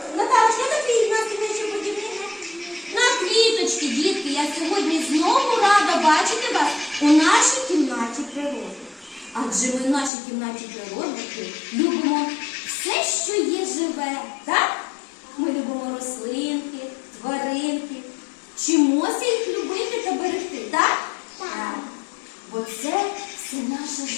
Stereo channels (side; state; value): right; drops out; at 10.1 s